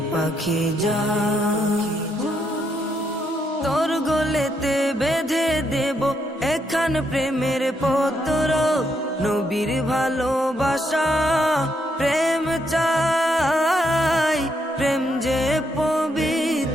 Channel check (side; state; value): both; normal; correlation 0.77